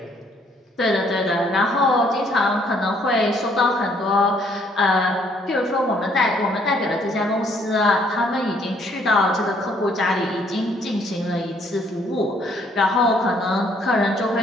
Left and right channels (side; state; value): both; normal; correlation 0.65